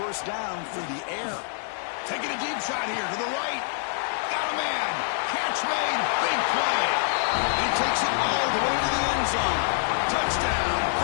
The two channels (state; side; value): silent; right; 61 dB below the other